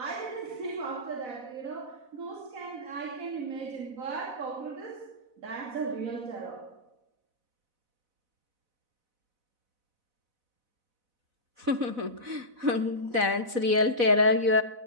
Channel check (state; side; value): late; left; 4.0 ms